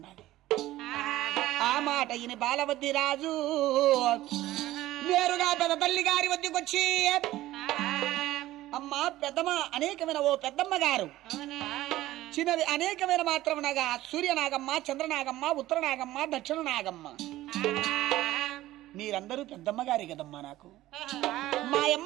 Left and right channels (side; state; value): left; quieter; 15.7 dB